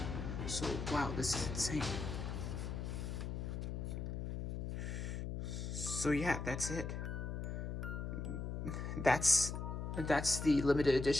So wow, this is insane. So yeah, that's it. That's the limited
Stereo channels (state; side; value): noise; left; hum, 4 dB below the sound